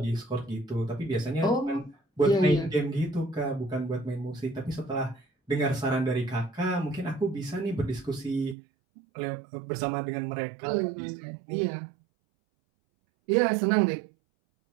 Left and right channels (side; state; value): left; drops out; at 8.6 s